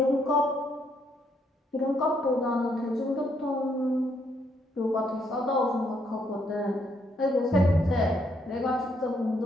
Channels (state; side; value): normal; both; correlation 0.73